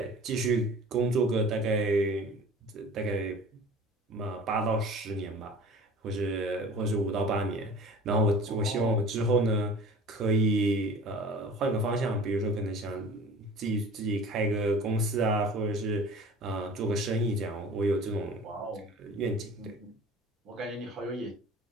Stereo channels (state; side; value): normal; both; correlation 0.43